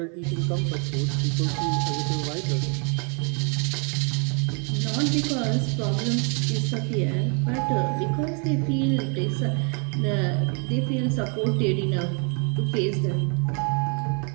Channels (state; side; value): quieter; left; 37.4 dB